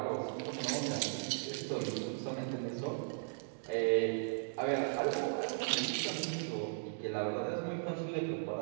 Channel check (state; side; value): silent; left; digital silence